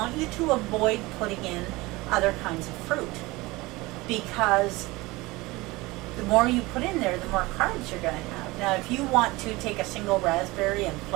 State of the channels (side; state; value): left; quieter; 21.7 dB